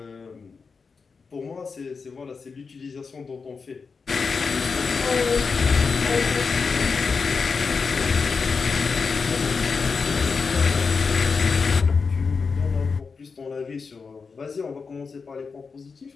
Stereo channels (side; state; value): right; quieter; 5.0 dB